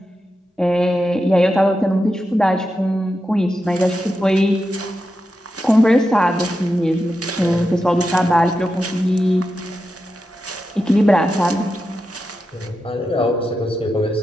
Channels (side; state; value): both; normal; correlation 0.89